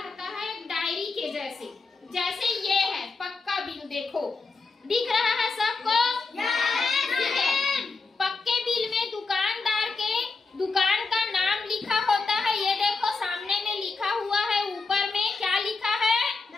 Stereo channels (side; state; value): right; quieter; 4.1 dB